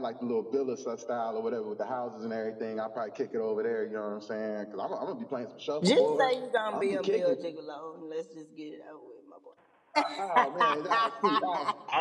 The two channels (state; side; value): identical; both; correlation 1.00